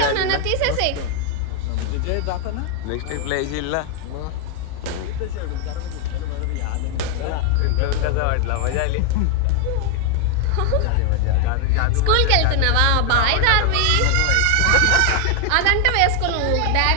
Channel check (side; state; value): both; different; correlation 0.01